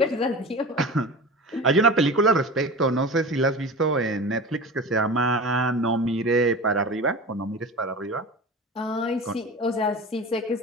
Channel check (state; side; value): normal; both; correlation 0.32